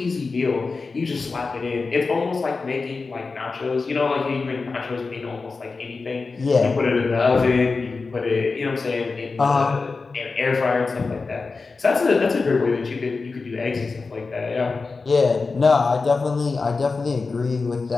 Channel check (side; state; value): right; quieter; 4.2 dB